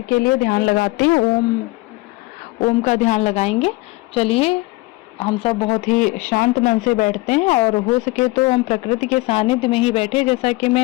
के लिए ध्यान लगाते हैं। ओम का ध्यान लगाएंगे। चलिए हम सब बहुत ही शांत मन से बैठते हैं और हो सके तो हम प्रकृति के सानिध्य में ही बैठे, जैसा कि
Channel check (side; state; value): right; quieter; 22.4 dB